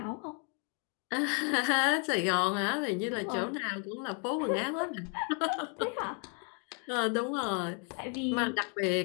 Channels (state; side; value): quieter; right; 39.8 dB